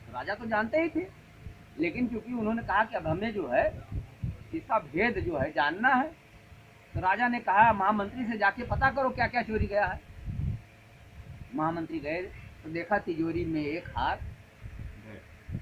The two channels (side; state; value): both; identical; correlation 1.00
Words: तो राजा तो जानते ही थे, लेकिन क्योंकि उन्होंने कहा कि अब हमें जो है इसका भेद जो है जानना है, तो राजा ने कहा महामंत्री से जाके पता करो क्या क्या चोरी गया है। महामंत्री गए तो देखा तिजोरी में एक हार